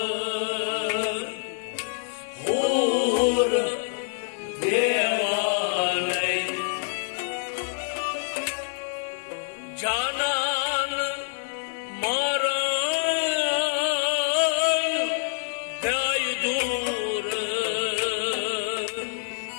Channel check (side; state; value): right; silent; digital silence